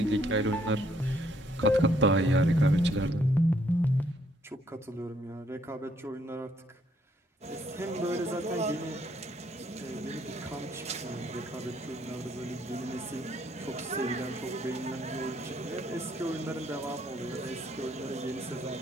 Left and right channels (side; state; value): both; normal; correlation 0.68